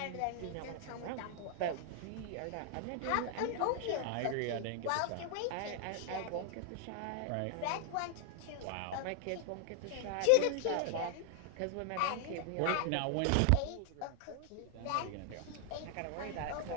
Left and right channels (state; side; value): different; both; correlation 0.00